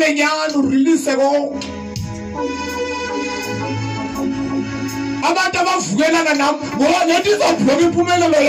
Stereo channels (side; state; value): both; identical; correlation 1.00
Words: nyani urelease konke. Abantu abavukelana nami ngoba nethi izobhloka impumelelo